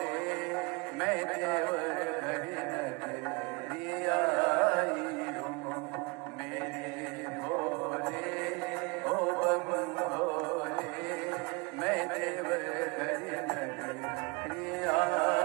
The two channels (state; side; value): quieter; left; 28.7 dB